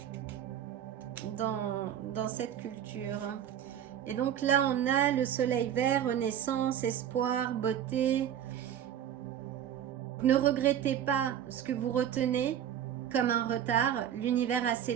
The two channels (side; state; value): left; quieter; 10.0 dB